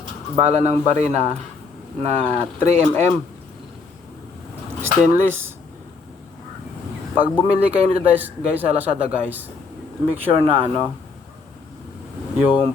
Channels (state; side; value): quieter; right; 4.5 dB